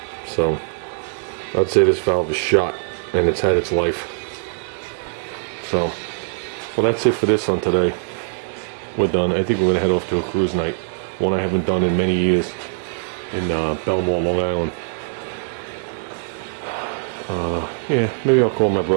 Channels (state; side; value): silent; left; digital silence